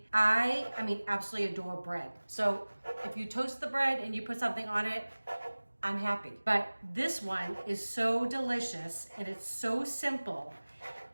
I absolutely adore bread. So if you toast the bread and you put something on it, I'm happy. But this one is so delicious and it's so simple.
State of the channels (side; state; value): both; inverted; correlation -1.00